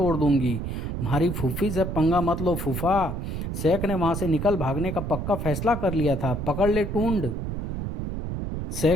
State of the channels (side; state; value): right; noise; rumble, 4 dB below the sound